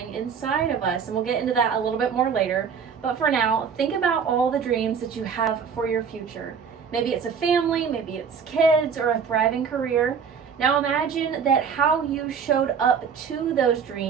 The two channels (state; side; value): quieter; left; 6.6 dB